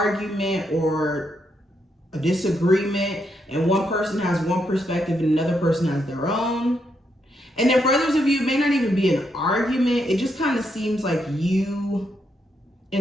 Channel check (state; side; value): normal; both; correlation 0.79